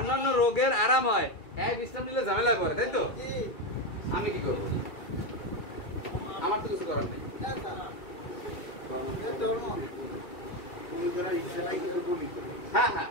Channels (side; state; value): right; late; 2.4 ms